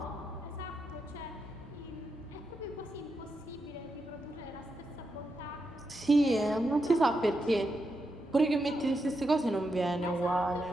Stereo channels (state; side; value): normal; both; correlation 0.85